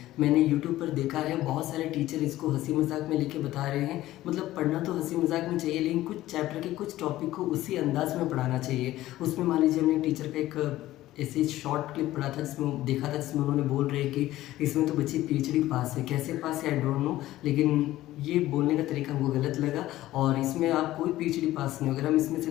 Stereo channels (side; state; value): right; quieter; 15.4 dB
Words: मैंने यूट्यूब पर देखा है बहुत सारे टीचर इसको हंसी मजाक में लेके बता रहे हैं। मतलब पढ़ना तो हंसी मजाक में चाहिए, लेकिन कुछ चैप्टर के कुछ टॉपिक को उसी अंदाज में पढ़ाना चाहिए। उसमें मान लीजिए हमने टीचर का एक ऐसे शॉर्ट क्लिप पढ़ा था, जिसमें देखा था, जिसमें उन्होंने बोल रहे कि इसमें तो बच्ची पीएचडी पास है। कैसे पास है आई डोंट नो, लेकिन ये बोलने का तरीका हमको गलत लगा। और इसमें आप कोई पीएचडी पास नहीं हो। अगर हम इसमें से